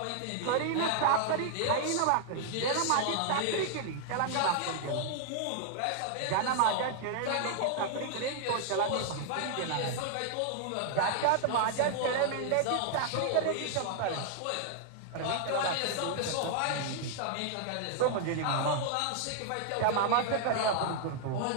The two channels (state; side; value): different; both; correlation -0.01